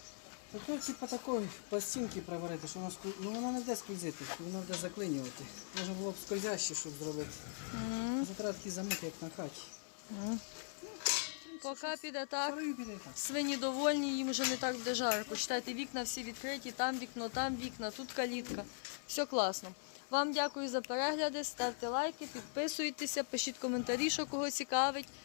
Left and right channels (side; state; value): right; silent; 51 dB below the other